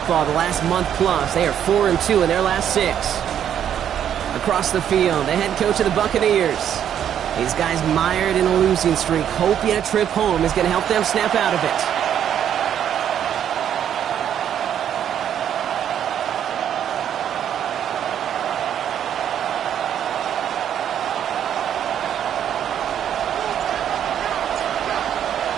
the last month plus. They are 4-2 in their last 6. Across the field, the head coach of the Buccaneers. These guys mired in a losing streak, hoping a trip home is going to help them snap out of it.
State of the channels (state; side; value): quieter; left; 9.6 dB